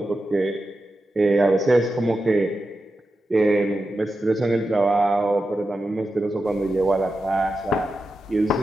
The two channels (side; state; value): both; normal; correlation 0.90